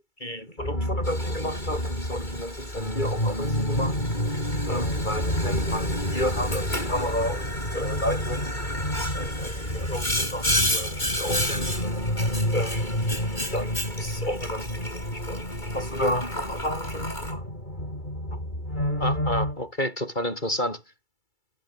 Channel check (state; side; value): late; right; 2.3 ms